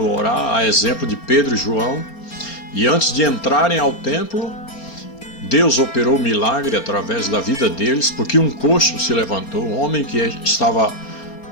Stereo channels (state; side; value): late; right; 4.3 ms